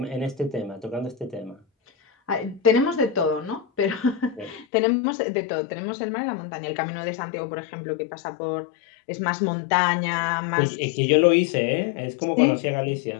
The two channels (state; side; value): drops out; right; at 4.7 s